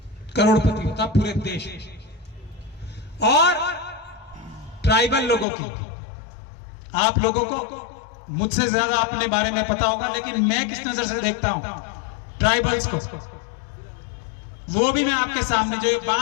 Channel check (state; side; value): drops out; right; at 5.5 s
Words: करोड़पति होता पूरे देश। और ट्राइबल लोगों की, आप लोगों को मुझसे ज्यादा अपने बारे में पता होगा, लेकिन मैं किस नजर से देखता हूं ट्राइबल्स को, वो भी मैं आपके सामने, जो